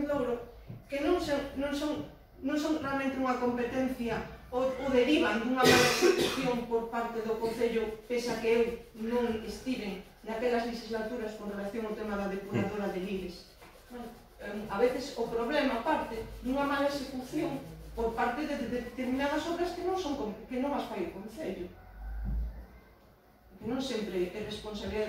Louro, que non son realmente unha competencia ou derivan dunha mala execución por parte do Concello, pese a que eu non estiven naquelas legislaturas con relación ao tema da depuradora de Lires. A veces o problema parte dunha mala execución por parte de determinadas obras que non as fai o Concello. Que non sempre é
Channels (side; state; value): both; identical; correlation 1.00